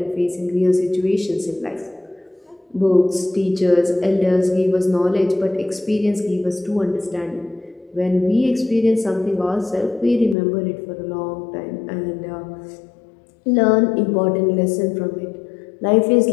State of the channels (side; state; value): right; drops out; at 10.4 s